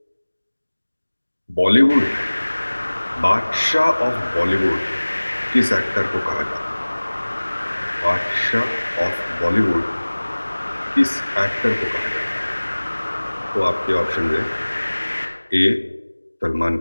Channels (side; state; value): both; inverted; correlation -1.00